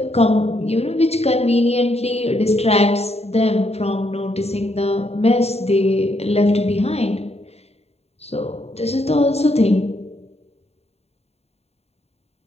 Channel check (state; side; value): late; right; 0.30 ms